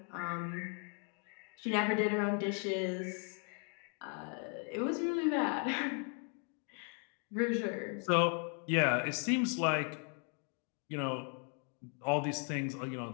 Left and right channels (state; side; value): quieter; right; 38.7 dB